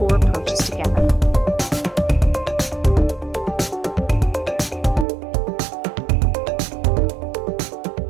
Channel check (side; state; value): left; drops out; at 5.1 s